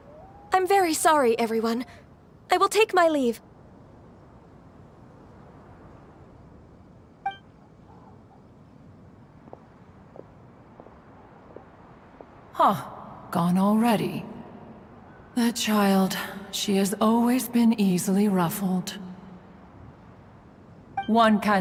I'm very sorry, everyone. I will take my leave. Huh. Gone already. That child, she has always been easily ruffled. One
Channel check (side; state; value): both; identical; correlation 1.00